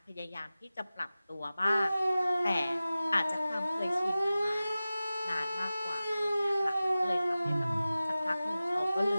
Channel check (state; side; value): inverted; both; correlation -0.96